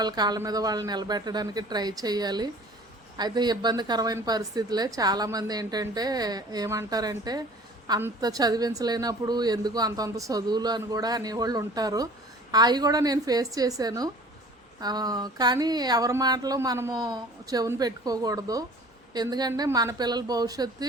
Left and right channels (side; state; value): both; normal; correlation 0.47